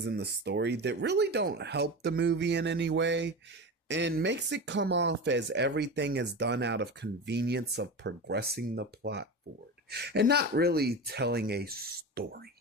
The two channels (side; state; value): both; normal; correlation 0.26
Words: in the story that really don't help the movie in any way, and makes it come off as everything is done out of convenience of progressing the plot forward, and not really telling a story.